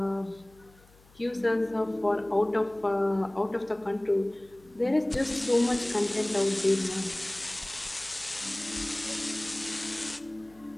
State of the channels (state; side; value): noise; left; hum, 27 dB below the sound